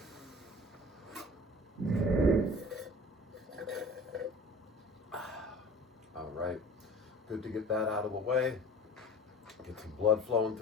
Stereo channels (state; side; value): normal; both; correlation 0.42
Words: All right, good to get that out of the way. Get some blood flowing